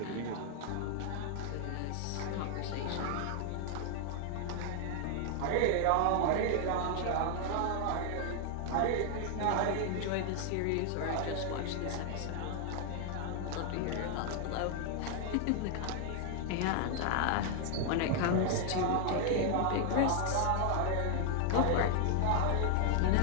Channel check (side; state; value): both; different; correlation 0.00